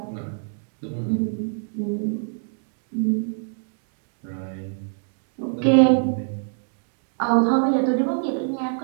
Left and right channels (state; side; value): silent; left; digital silence